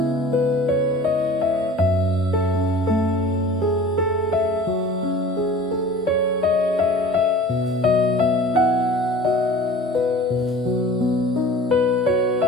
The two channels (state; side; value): normal; both; correlation 0.43